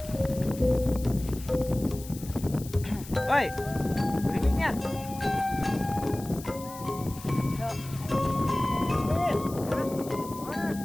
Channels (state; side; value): noise; left; hiss, 16 dB below the sound